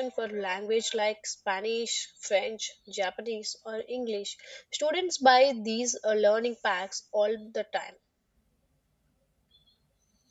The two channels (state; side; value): identical; both; correlation 1.00